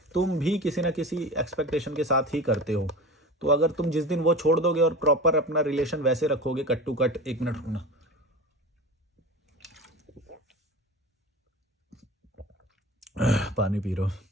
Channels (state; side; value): normal; both; correlation 0.31